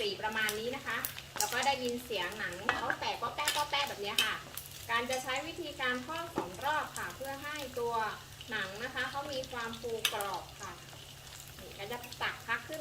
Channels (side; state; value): both; identical; correlation 1.00